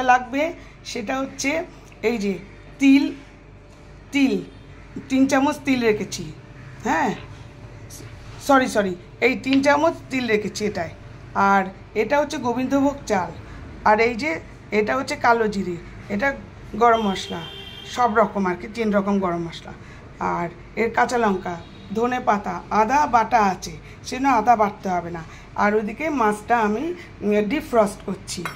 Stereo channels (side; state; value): both; identical; correlation 1.00